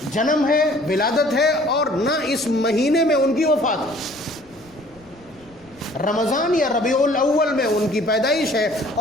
جنم ہے، ولادت ہے، اور نہ اس مہینے میں ان کی وفات ہے. رمضان یا ربیع الاول میں ان کی پیدائش ہے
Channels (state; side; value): noise; left; rumble, 28 dB below the sound